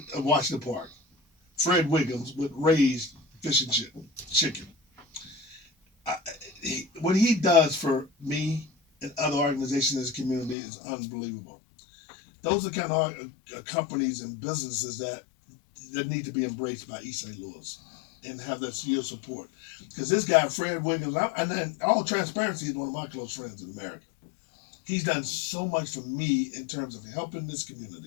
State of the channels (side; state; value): right; drops out; at 10.6 s